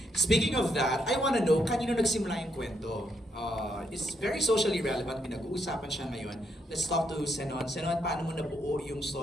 Speaking of that, I wanna know, kanino nagsimula yung kwento? It's very socially relevant, pinag-uusapan siya ngayon. Let's talk to Senon. Senon, paano mo nabuo yung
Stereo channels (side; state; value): both; normal; correlation 0.77